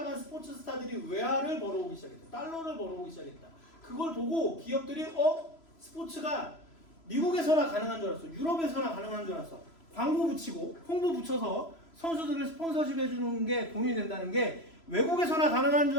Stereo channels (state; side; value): late; right; 3.0 ms